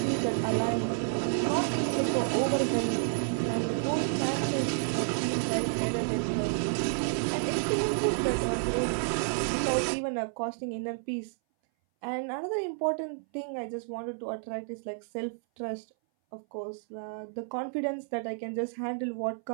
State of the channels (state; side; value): silent; left; 58 dB below the other